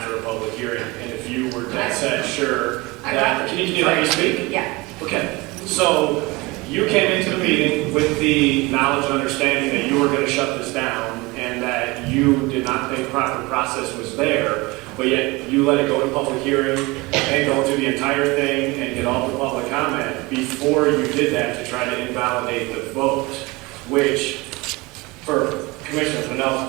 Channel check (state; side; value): quieter; left; 23.5 dB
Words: a public hearing, and if you were dead set sure that, can you let me speak? Yeah. Okay, so you came into the meeting with the knowledge and understanding that you were gonna shut this down and that you did not think proper process was there, but yet you let it go to public hearing and go through the entire thing and get all the public comment before you did that to try to invalidate the vote, which, for Commissioner Fennell's